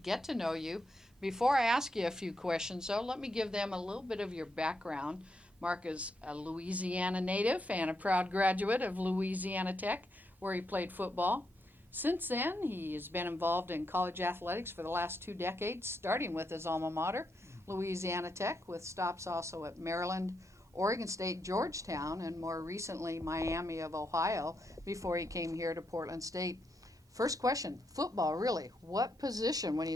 to know you. Before I ask you a few questions, though, let me give them a little bit of your background. Mark is a Louisiana native and a proud graduate of Louisiana Tech, where he played football. Since then, he has been involved in college athletics for the last 2 decades, starting with his alma mater, Louisiana Tech, with stops also at Maryland, Oregon State, Georgetown, and more recently Miami of Ohio before he came here to Portland State. First question, football, really. What position? When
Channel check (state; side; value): normal; both; correlation 0.81